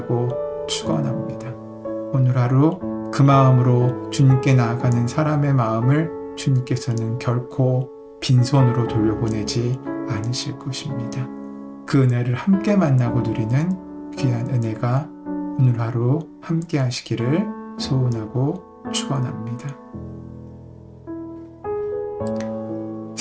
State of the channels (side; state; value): both; identical; correlation 1.00